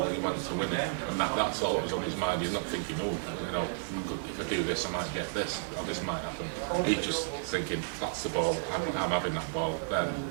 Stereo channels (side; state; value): left; silent; 56 dB below the other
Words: and he went to win it, and that's all that was on his mind. He's not thinking, oh, you know, if I do this, I might get this, or this might happen. He's just thinking, that's the ball. I'm having that ball. Then